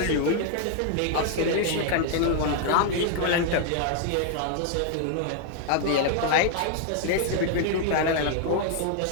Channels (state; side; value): different; both; correlation 0.00